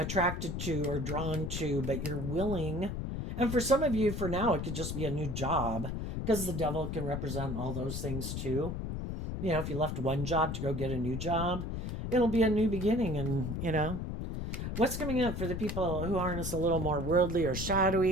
to or drawn to, but you're willing. And for some of you, for now, it could just be a new job, because the devil can represent all those things too. You know, if you left one job to go get a new job, it'll be a new beginning. And, you know, what's coming up for the people who harness a little more worldly or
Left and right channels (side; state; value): left; noise; rumble, 4 dB below the sound